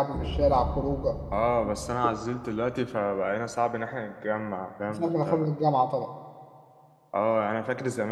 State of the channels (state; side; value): identical; both; correlation 1.00